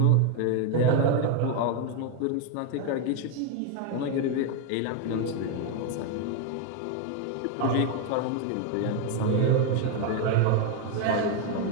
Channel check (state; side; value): different; both; correlation 0.01